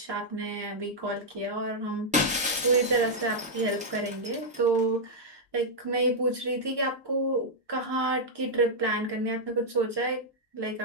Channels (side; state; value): both; normal; correlation -0.05